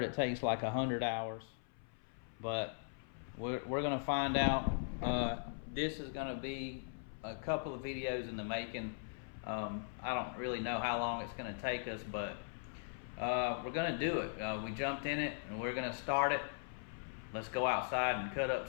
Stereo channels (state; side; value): silent; right; 51 dB below the other